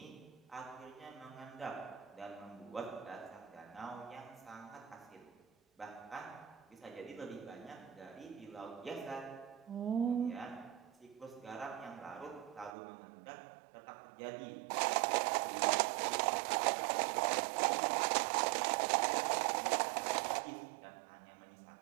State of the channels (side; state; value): left; drops out; at 12.8 s